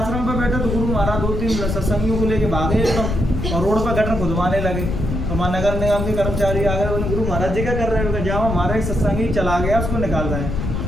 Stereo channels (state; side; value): noise; left; rumble, 2 dB below the sound